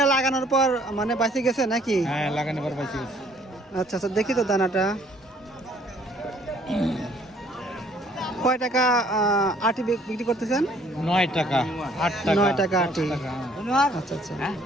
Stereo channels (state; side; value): normal; both; correlation 0.60